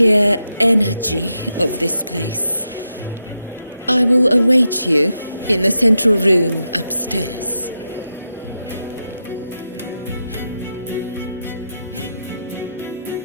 energy of this place. I will await you in the central room upstairs.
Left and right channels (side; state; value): both; inverted; correlation -0.86